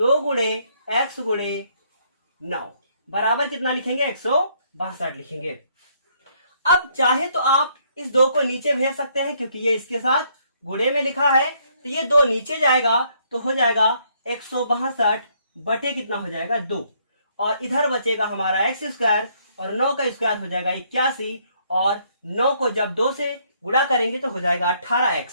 गुणे x गुणे 9 बराबर कितना लिखेंगे, 162 लिखेंगे। अब चाहे तो आप इस 2 को नीचे भेज सकते हैं, क्योंकि ये इसके साथ गुणे में लिखा है, तो ये 2 नीचे जाएगा तो हो जाएगा 162 बटे कितना हो जाएगा 2, और इधर बचेगा हमारा x स्क्वायर और 9 का स्क्वायर हो जाएगा 81, और 9 को जब 2 से गुणा करेंगे तो हो जाएगा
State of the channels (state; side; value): inverted; both; correlation -0.68